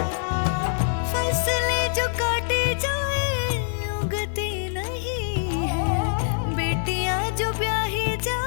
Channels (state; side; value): silent; right; digital silence